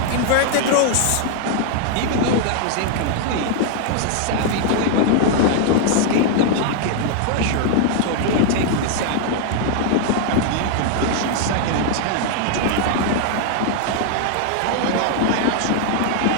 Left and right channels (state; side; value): different; both; correlation 0.00